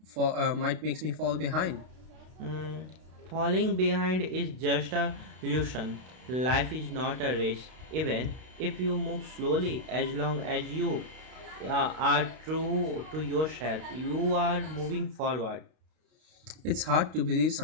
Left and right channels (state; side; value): late; left; 32 ms